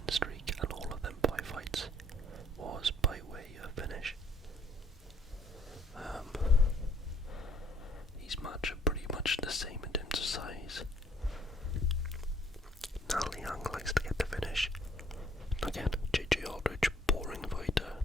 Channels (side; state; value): both; normal; correlation 0.62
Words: streak, and all of them 5 fights was by way of finish. These match are pretty much the same in terms of size. Na Liang likes to get the finish. Again, JJ Aldridge, boring fighter.